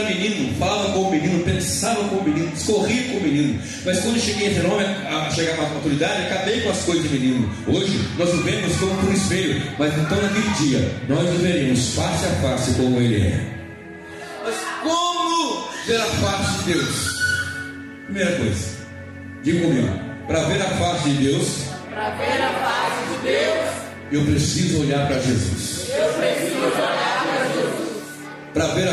menino, falava com o menino, pensava com o menino, discorria com o menino. Mas quando cheguei a ser homem, a chegar à maturidade, acabei com as coisas de menino. Hoje nós vivemos como por espelho, mas então naquele dia nós veremos face a face como ele é. Mas como ver a face de Deus? Primeira coisa, diga comigo: para ver a face de Deus, eu preciso olhar para Jesus. Para ver a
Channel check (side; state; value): both; identical; correlation 1.00